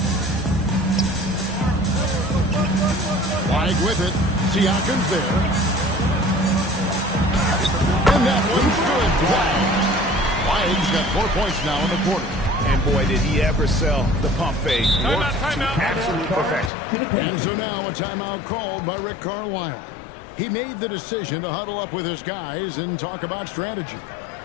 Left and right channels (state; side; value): drops out; right; at 16.7 s